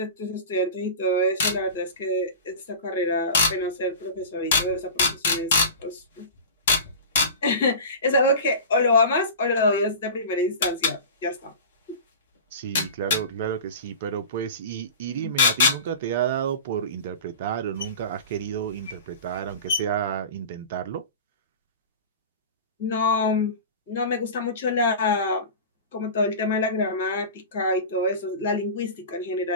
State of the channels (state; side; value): inverted; both; correlation -0.33